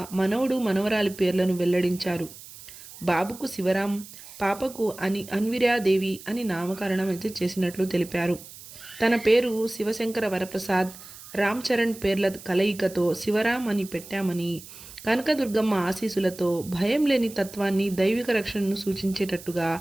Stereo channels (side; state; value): right; noise; hiss, 17 dB below the sound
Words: మనవడు, మనవరాలి పేర్లను వెల్లడించారు. బాబుకు శివరాం, పాపకు అన్విరాదేవి అని నామకరణం అయితే చేసినట్లు తెలిపారు. తన పేరు శివశంకర వరప్రసాద్, రామ్ చరణ్ పేర్ల కలయికతో శివరాం అని పెట్టామని, కనకదుర్గమ్మ ఆశీస్సులతో భయం లేని తత్వాన్ని, దైవిక రక్షణను సూచించేటట్టుగా